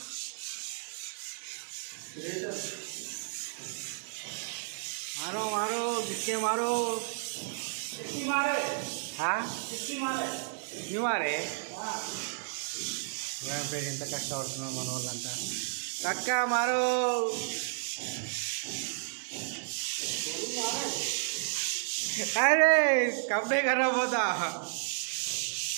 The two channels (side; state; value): left; silent; 56 dB below the other